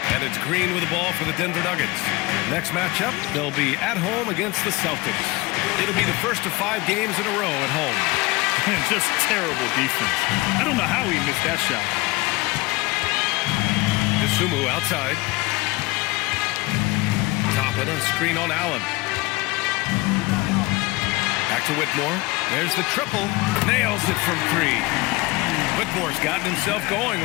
And it's Green with the ball for the Denver Nuggets. Next matchup, they'll be at home against the Celtics. It'll be the first of 5 games in a row at home. Just terrible defense. I don't know how he missed that shot. Dosunmu outside. Toppin on screen on Allen. Back to Whitmore. There's the triple. Nails it from 3. Whitmore's gotten himself going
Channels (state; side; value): quieter; right; 22.6 dB